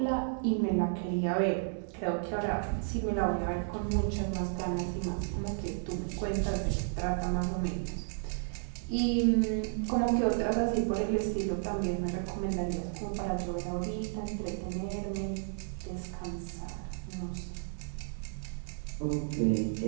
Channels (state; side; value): silent; left; digital silence